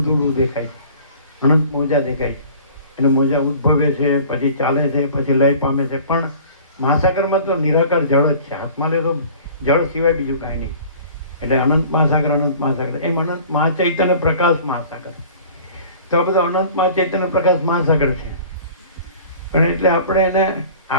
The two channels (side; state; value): both; inverted; correlation -0.46